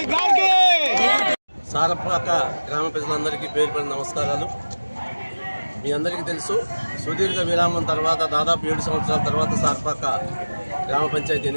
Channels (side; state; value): both; inverted; correlation -1.00